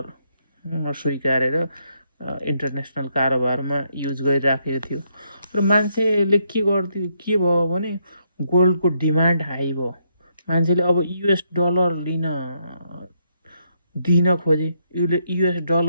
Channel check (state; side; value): inverted; both; correlation -0.76